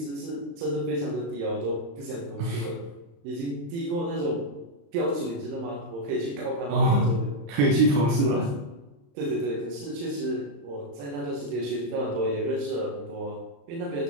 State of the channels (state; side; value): late; left; 35 ms